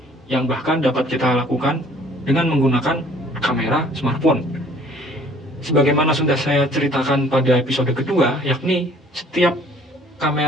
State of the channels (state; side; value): normal; both; correlation 0.56